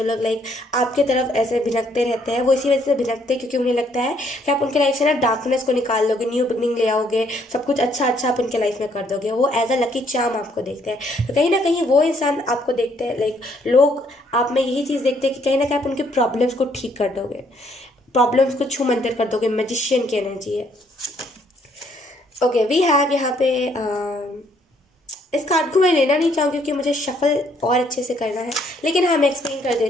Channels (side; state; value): both; normal; correlation 0.68